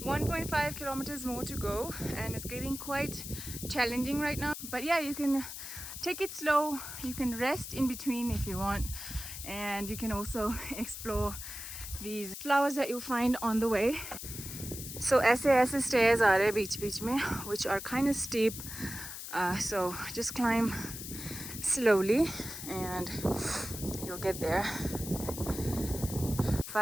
1.5 kilometers more to go, and it's getting quite challenging right now. But yeah, you can take it slow, you can rest in between if you want, and you can also explore these flowers that you'll find on the way. So ऐसे stairs आ रहे हैं बीच में, which are kind of steep. So just climb slowly and you'll get there.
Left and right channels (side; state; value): left; noise; hiss, 9 dB below the sound